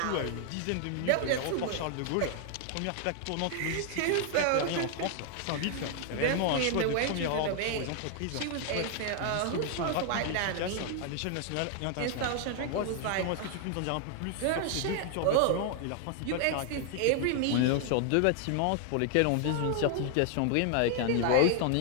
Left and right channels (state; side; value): different; both; correlation 0.00